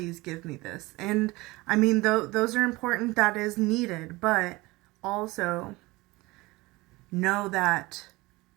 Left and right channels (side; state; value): left; quieter; 21.8 dB